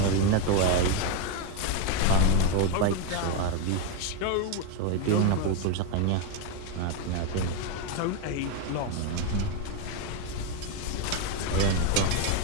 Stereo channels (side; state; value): both; different; correlation 0.01